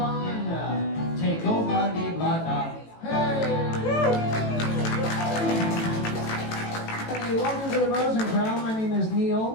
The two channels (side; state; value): right; late; 18 ms